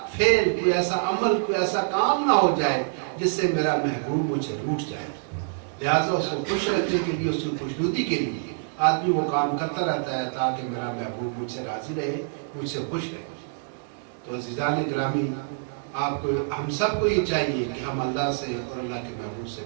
فعل، کوئی ایسا عمل، کوئی ایسا کام نہ ہو جائے جس سے میرا محبوب مجھ سے روٹھ جائے. لہٰذا اس کو خوش رکھنے کے لیے، اس کی خوشنودی کے لیے آدمی وہ کام کرتا رہتا ہے تاکہ میرا محبوب مجھ سے راضی رہے، مجھ سے خوش رہے. تو عزیزان گرامی، آپ کو، ہم سب کو یہ چاہیے کہ ہم اللہ سے اور اللہ کے محبوب سے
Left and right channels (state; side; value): silent; left; digital silence